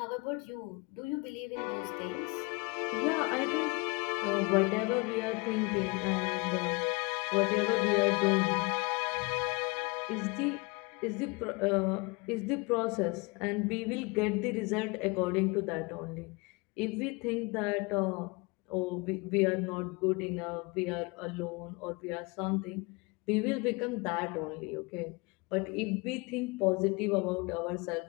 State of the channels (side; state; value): right; quieter; 27.7 dB